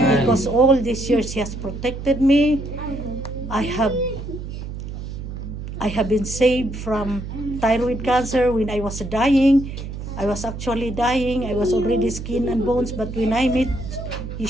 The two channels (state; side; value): noise; right; hum, 8 dB below the sound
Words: Because all these years He has protected me. I have been saved from thyroid cancer when I was dying. I was actually dying. I was already skin and bones, but when I met